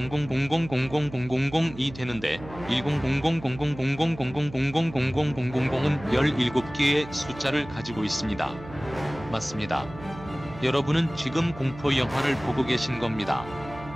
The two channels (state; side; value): noise; right; hum, 15 dB below the sound